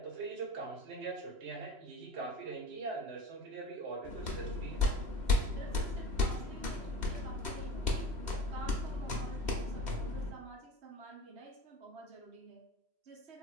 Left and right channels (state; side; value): late; left; 3.0 ms